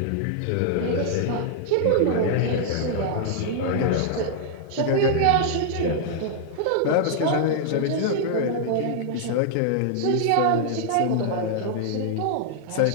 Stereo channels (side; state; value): both; different; correlation -0.01